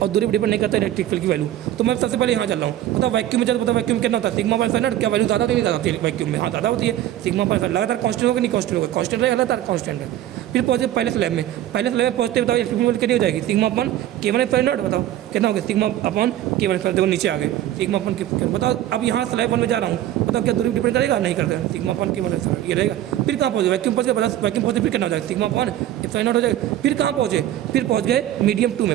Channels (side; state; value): left; quieter; 12.7 dB